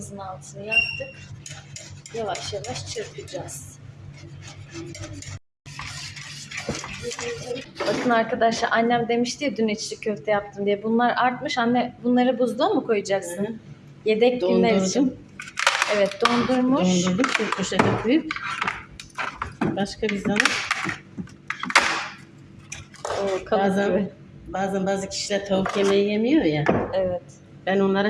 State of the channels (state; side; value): identical; both; correlation 1.00